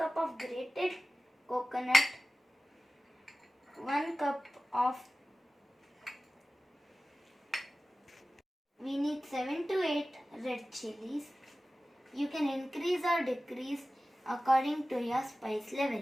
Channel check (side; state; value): both; normal; correlation 0.96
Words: of grated coconut, 1 cup of we need 7 to 8 red chilies. You can increase or decrease according to your spice